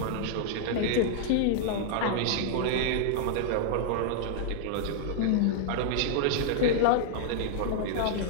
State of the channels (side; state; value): both; different; correlation -0.01